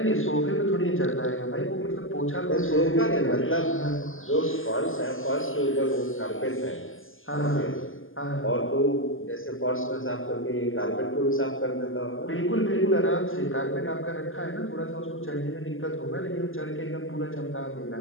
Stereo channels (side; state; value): right; late; 0.59 ms